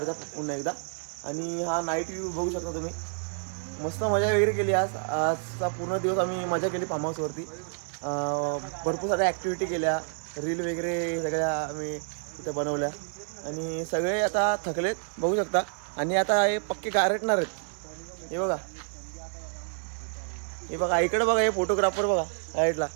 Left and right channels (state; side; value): silent; left; 59 dB below the other